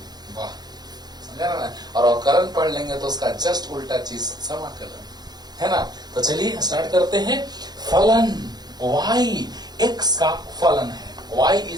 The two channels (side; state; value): left; late; 0.20 ms